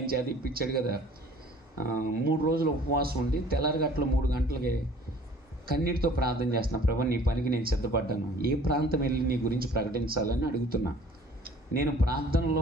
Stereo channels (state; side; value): normal; both; correlation 0.51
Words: చేత ఇప్పించాడు కదా. 3 రోజులు ఉపవాసం ఉండి తెల్లారగట్ల 3 గంటలకి కన్నీటితో ప్రార్థన చేస్తున్నా, ప్రభు నీ పనికి నేను సిద్ధపడ్డాను, ఏ ప్రాంతం వెళ్ళి నీ గురించి ప్రకటించాలని అడుగుతున్నా. నేను